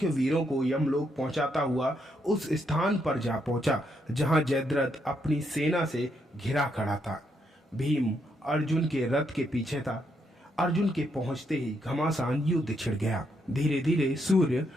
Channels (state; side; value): normal; both; correlation 0.77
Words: वीरों को यमलोक पहुंचाता हुआ उस स्थान पर जा पहुंचा जहां जयद्रथ अपनी सेना से घिरा खड़ा था। भीम अर्जुन के रथ के पीछे था। अर्जुन के पहुंचते ही घमासान युद्ध छिड़ गया। धीरे धीरे सूर्य